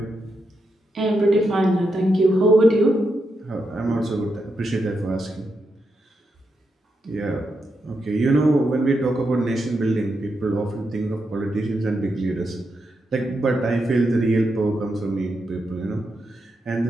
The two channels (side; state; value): both; normal; correlation 0.84